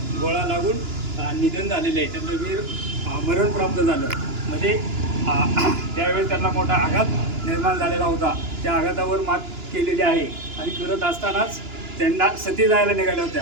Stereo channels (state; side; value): late; left; 2.9 ms